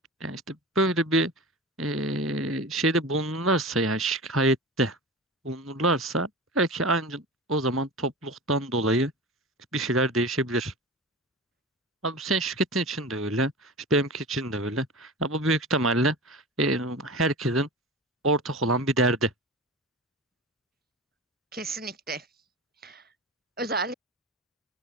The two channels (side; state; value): both; normal; correlation 0.31